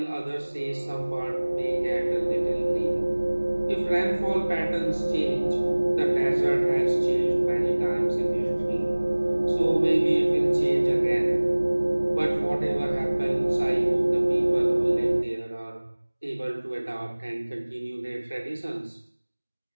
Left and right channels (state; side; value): inverted; both; correlation -1.00